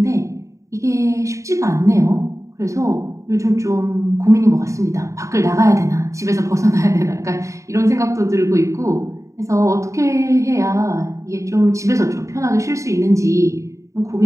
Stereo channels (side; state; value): left; late; 0.15 ms